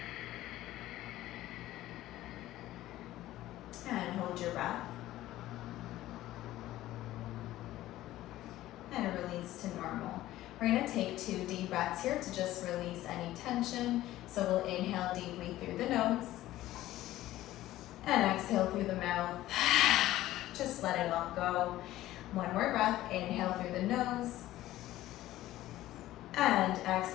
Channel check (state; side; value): quieter; right; 15.1 dB